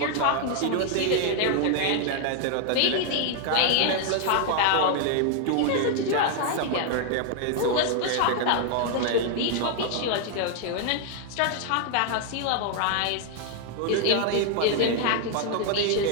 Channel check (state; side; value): different; both; correlation 0.00